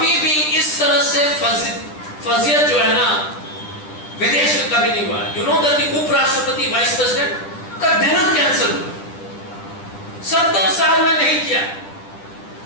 भी इस तरह से फजियत जो है ना विदेश में कभी नहीं हुआ। यू नो दैट उपराष्ट्रपति वाइस प्रेसिडेंट का डिनर कैंसिल हुआ, 70 साल में नहीं किया।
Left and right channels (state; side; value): late; right; 10 ms